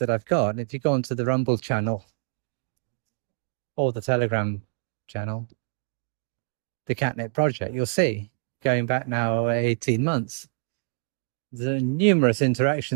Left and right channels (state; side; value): silent; left; digital silence